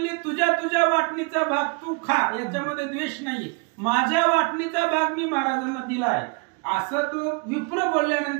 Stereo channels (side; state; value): left; quieter; 32.6 dB